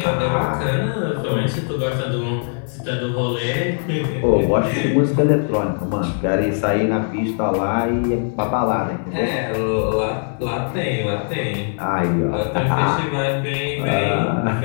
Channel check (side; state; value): right; silent; digital silence